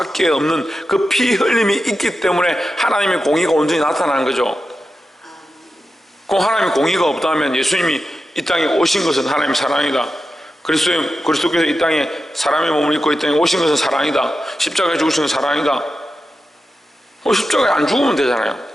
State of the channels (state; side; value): normal; both; correlation 0.90